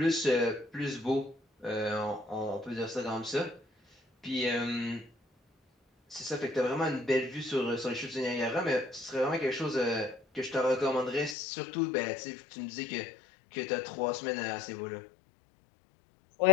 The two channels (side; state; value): right; drops out; at 11.4 s